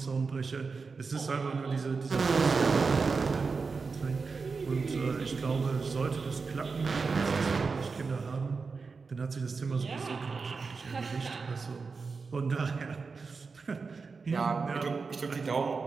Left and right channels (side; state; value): left; quieter; 4.7 dB